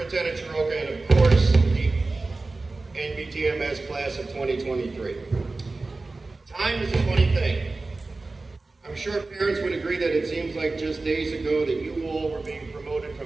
Chiroka, and of course, the NBTMS class of 2023. Time is a funny thing. I'm sure parents would agree that it seems like just days ago that you all were being promoted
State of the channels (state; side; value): quieter; left; 3.4 dB